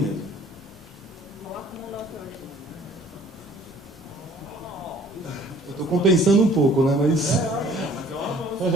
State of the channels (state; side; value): normal; both; correlation 0.55